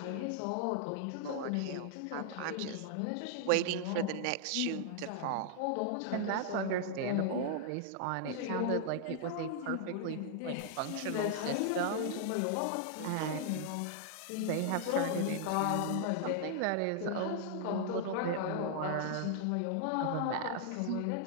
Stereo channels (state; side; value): different; both; correlation -0.01